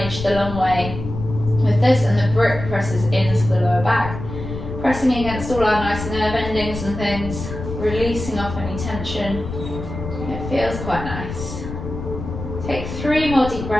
the long way with this, and the brick presses into the lower back, pressing against all our nice nerve endings and things, releasing off any tension. It feels quite nice. Take 3 more deep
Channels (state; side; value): noise; left; rumble, 8 dB below the sound